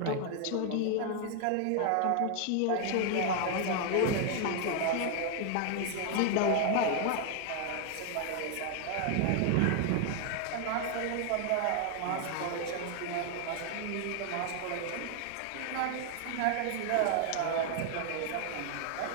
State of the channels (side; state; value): both; different; correlation 0.00